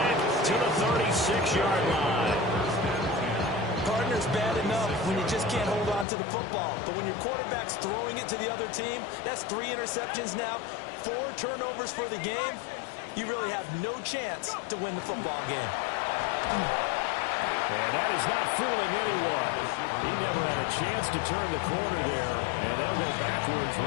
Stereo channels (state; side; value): drops out; right; at 6.1 s